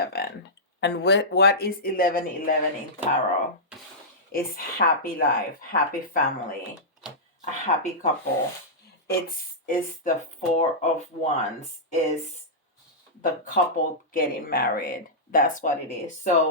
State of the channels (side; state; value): both; normal; correlation -0.13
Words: And what is 1111 in tarot? It's happy life, happy family, a happy couple. It's the 4 of Wands, is the couple getting married. That's what it is.